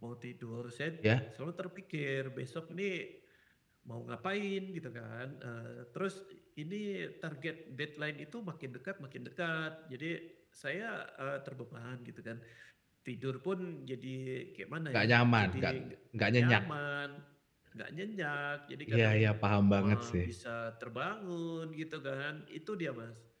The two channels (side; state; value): both; identical; correlation 1.00